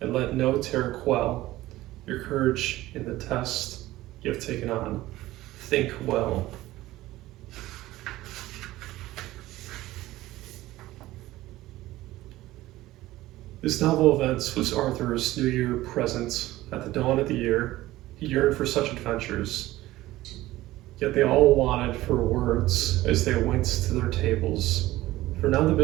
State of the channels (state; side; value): quieter; left; 16.7 dB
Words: and let no terror quell your courage in the test you have taken on. Think well. This novel event was Arthur's New Year present. At the dawn of the year, he yearned for such adventures. Yet they all wanted for words as they went to their tables. For now the